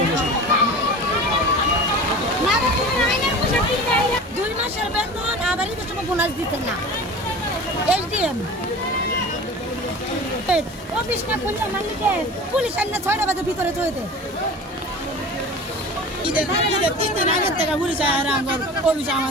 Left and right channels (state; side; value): normal; both; correlation 0.37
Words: 2 মাসের বেতন আবার ঈদের সময় বোনাস দিতে না। এসডিএম অফিস না খুললে মালিকে পুলিশ আইনে 6টা বাজে ভিতরে চলে ঈদের 3 দিন আগের থেকে পুলিশ আর অফিস